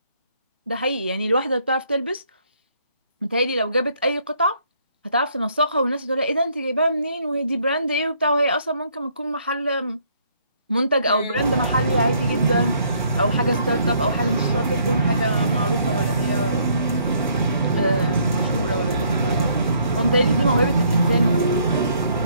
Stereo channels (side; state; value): both; inverted; correlation -0.66